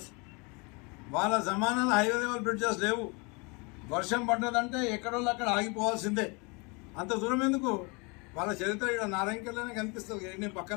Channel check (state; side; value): quieter; right; 29.7 dB